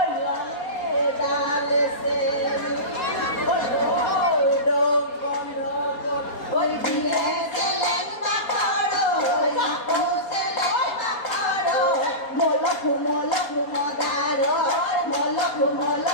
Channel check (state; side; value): late; right; 4.2 ms